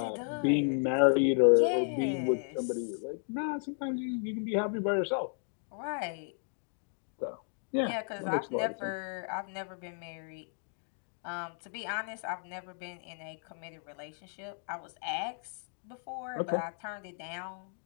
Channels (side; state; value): right; silent; 55 dB below the other